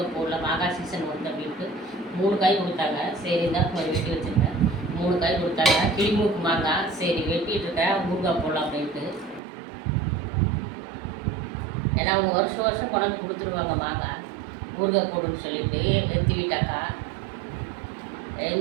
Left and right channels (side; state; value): left; drops out; at 9.4 s